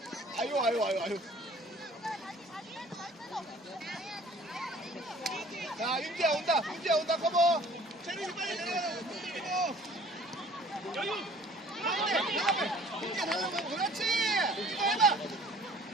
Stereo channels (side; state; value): both; normal; correlation 0.51